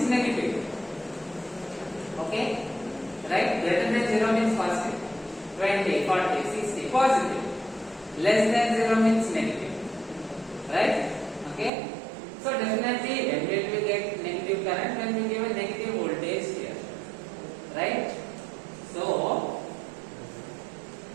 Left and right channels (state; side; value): drops out; left; at 11.7 s